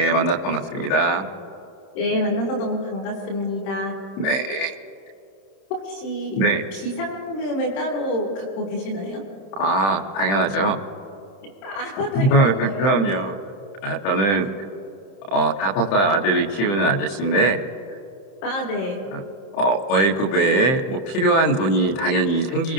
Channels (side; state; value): right; late; 31 ms